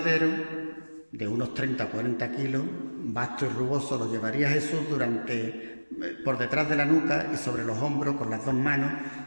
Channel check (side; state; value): both; inverted; correlation -1.00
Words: de unos 30 o 40 kilos, vasto y rugoso, lo llevaría Jesús por detrás de la nuca y sobre los hombros con las dos manos,